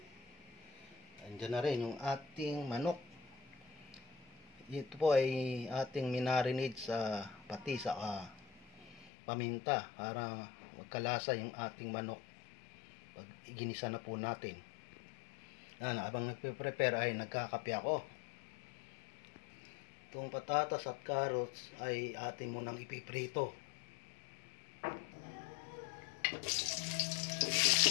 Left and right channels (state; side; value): drops out; right; at 9.1 s